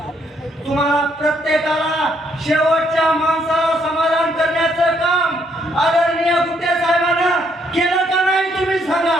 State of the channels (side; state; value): both; normal; correlation 0.71